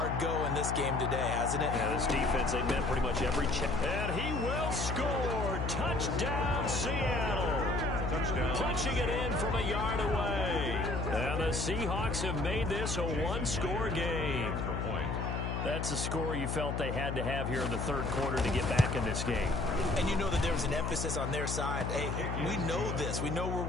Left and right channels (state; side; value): noise; left; hum, 2 dB below the sound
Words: go in this game today, hasn't it? Yeah, this defense, they met pretty much every check. And he will score. Touchdown, Seattle. Touchdown. Punching it in from a yard away. And the Seahawks have made this a one-score game. That's a score you felt they had to have here in the third quarter to get back in this game. And you know that there was an emphasis on their side. Hey, we know this. We know where